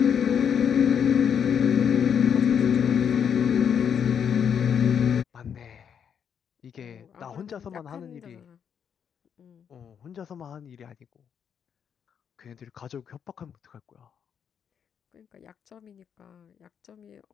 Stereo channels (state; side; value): quieter; right; 7.8 dB